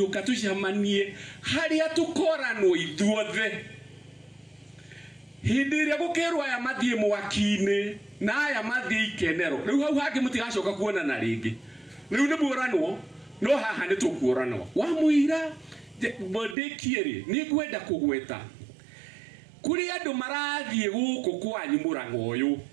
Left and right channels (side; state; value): left; drops out; at 16.6 s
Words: tucemanie haria tukoranwo ithuothe hindi ĩrĩa gũkĩrwo aya mathie mwaki-inĩ na aya mathie ikenero rĩu hau hangĩ mũtigacoka kuonana rĩngĩ rĩu nĩ muoranwo no haha nĩ tũkuoranwo wa mũira bondekiere ni ngwenda kugweta kuri andu marathie guku kwanyu Murang'a uyu